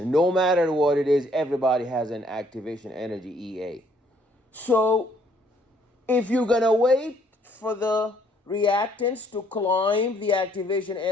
No matter what it is, everybody has an activation energy EA. So if you're gonna wait for the reactants to climb the activation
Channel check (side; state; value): both; normal; correlation 0.65